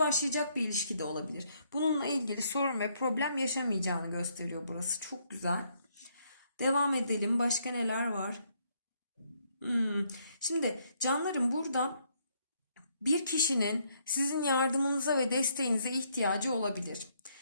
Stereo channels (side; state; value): both; inverted; correlation -0.71